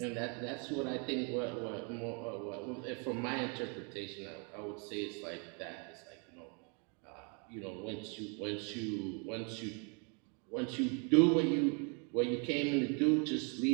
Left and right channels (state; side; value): quieter; left; 36.4 dB